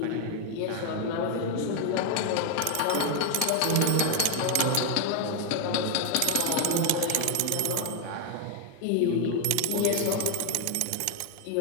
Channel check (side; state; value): both; different; correlation 0.01